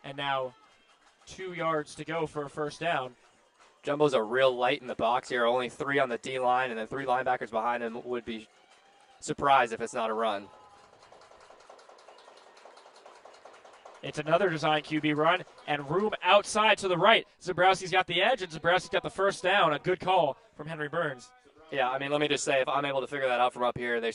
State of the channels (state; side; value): identical; both; correlation 1.00